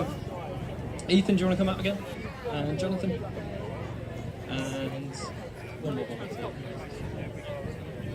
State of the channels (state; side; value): identical; both; correlation 1.00